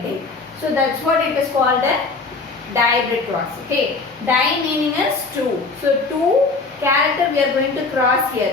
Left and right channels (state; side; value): quieter; right; 3.9 dB